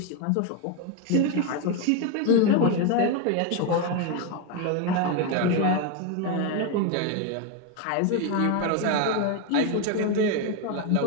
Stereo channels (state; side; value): different; both; correlation 0.02